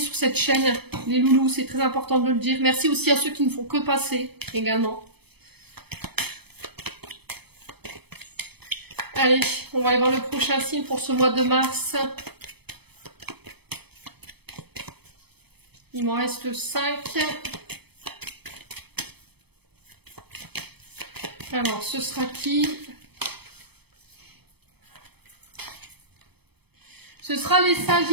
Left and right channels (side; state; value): left; late; 0.97 ms